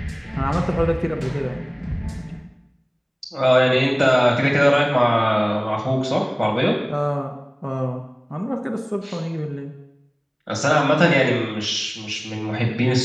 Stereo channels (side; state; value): both; identical; correlation 1.00